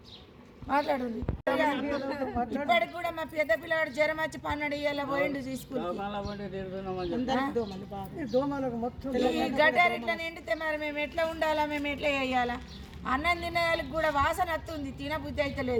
మాట్లాడుంది. ఇప్పటికి కూడా మా పెద్ద పిల్లవాడు జ్వరం వచ్చి 12 ఏళ్ళ పోయిండు స్కూల్కి. ఈ గటార్ ఇట్లా నిండితే మరి మేము ఎట్లా ఉండాలా, మేము ఎట్లా వేయాలా? అన్నం తినేదానికి కూడా వాసన వస్తుంది, తినబుద్ధి అయితే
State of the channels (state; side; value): identical; both; correlation 1.00